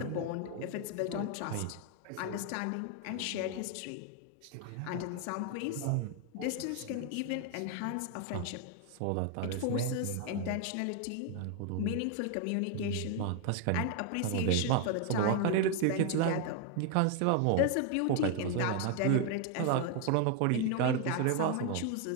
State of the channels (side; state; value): both; different; correlation 0.01